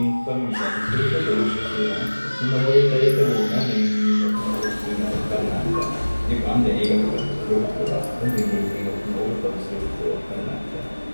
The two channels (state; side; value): inverted; both; correlation -1.00